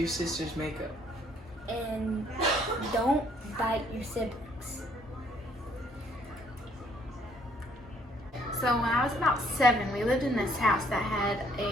sister's makeup. And don't bite your siblings. So when I was about 7, we lived in this house that had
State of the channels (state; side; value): normal; both; correlation 0.65